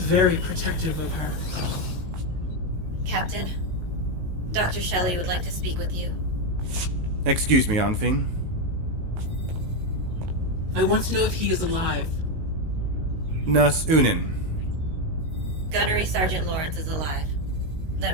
protective of her. Captain, Dr. Shelley would like to speak with you. Excuse me, Feen. I want to know if he is alive. Nurse Unin. Gunnery Sergeant Lawrence is alive. They're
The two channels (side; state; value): left; late; 19 ms